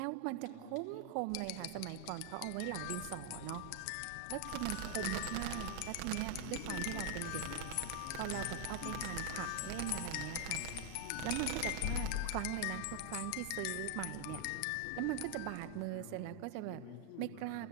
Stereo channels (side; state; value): both; different; correlation 0.00